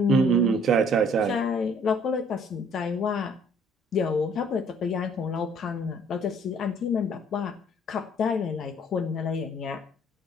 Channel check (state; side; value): normal; both; correlation 0.59